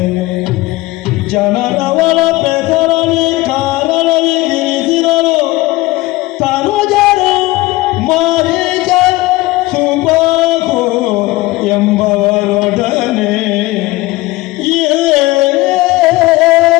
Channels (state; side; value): quieter; right; 19.8 dB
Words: ಜನರವಳ ಪೆದರಲಿ ಕಾರಣವಿಗಿರಿಸಿರಲು ತನುಜರು ಮಾರೀಚ ಸುಬಾಹು ಎಂಬವರೊಡನೆ